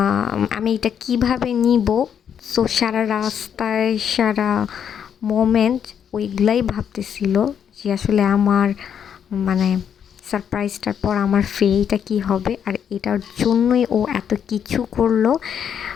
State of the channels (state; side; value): quieter; right; 8.3 dB